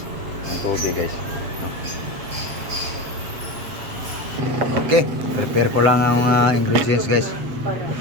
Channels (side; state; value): left; late; 7.8 ms